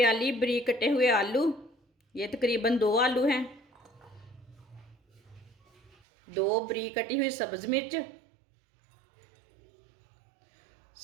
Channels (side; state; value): left; drops out; at 5.9 s